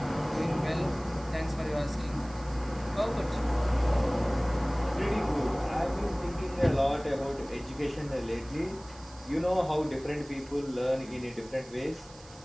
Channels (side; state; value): right; noise; hiss, 21 dB below the sound